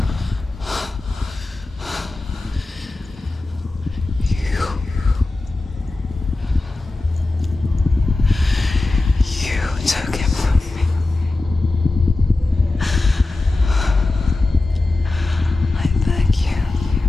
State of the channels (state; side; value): quieter; right; 3.1 dB